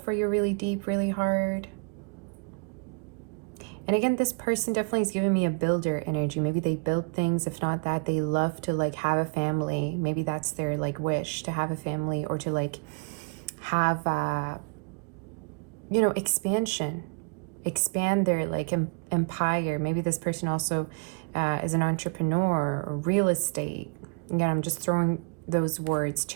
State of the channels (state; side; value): quieter; left; 37.0 dB